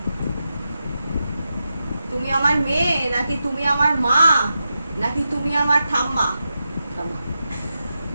তুমি আমার মেয়ে নাকি তুমি আমার মা নাকি তুমি আমার ঠাম্মা? থামা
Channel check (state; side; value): inverted; both; correlation -0.89